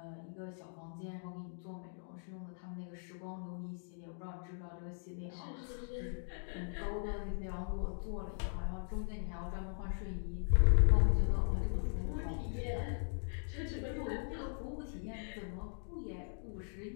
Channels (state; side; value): silent; right; digital silence